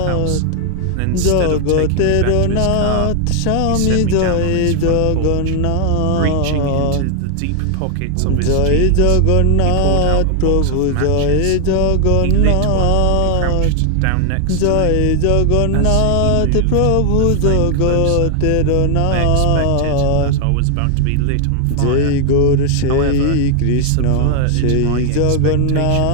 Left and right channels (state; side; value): different; both; correlation 0.00